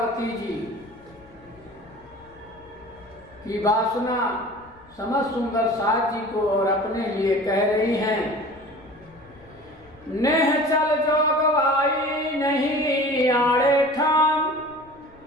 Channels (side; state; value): left; noise; rumble, 27 dB below the sound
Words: जी की वासना समस्त सुंदर साथ जी को और अपने लिए कह रही हैं। नेह चल जोगवाई नहीं आड़े ठाम,